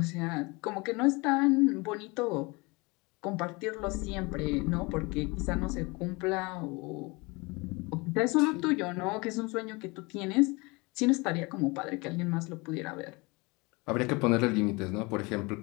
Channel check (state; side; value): quieter; right; 26.2 dB